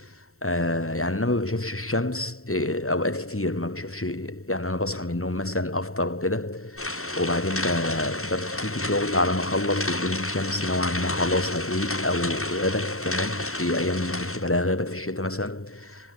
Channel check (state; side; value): late; right; 0.63 ms